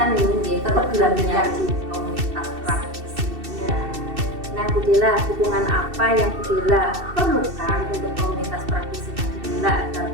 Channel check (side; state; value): left; late; 2.7 ms